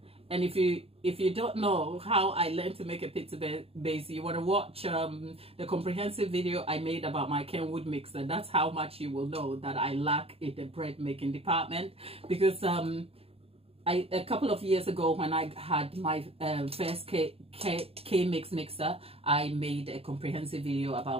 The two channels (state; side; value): late; left; 0.28 ms